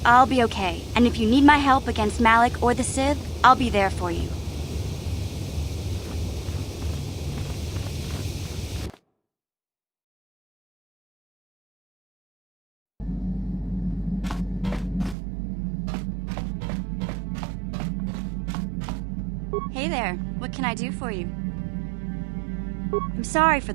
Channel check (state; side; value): drops out; left; at 15.2 s